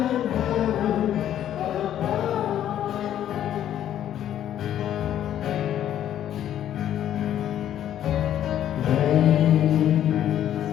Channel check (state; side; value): quieter; right; 11.0 dB